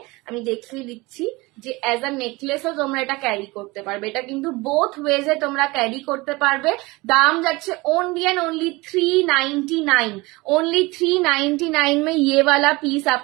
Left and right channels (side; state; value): left; quieter; 22.8 dB